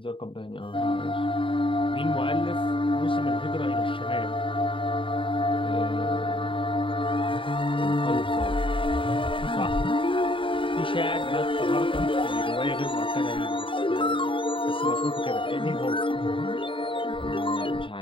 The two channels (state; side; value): late; right; 0.25 ms